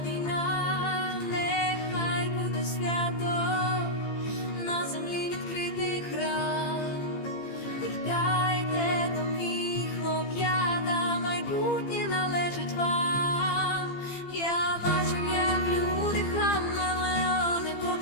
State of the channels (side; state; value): right; late; 15 ms